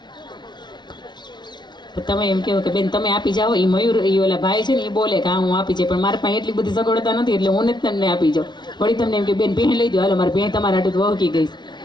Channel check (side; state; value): right; late; 0.21 ms